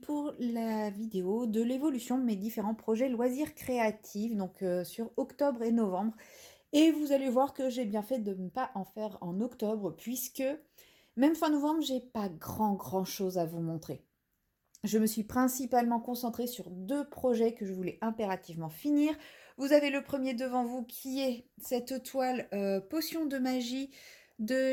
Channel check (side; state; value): both; identical; correlation 1.00